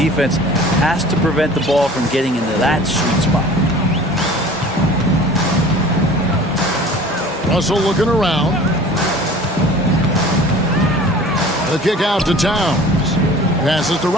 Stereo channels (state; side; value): normal; both; correlation 0.45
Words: has to prevent the ball from getting into that sweet spot. Russell looking around. The kick out to Towns. Passes to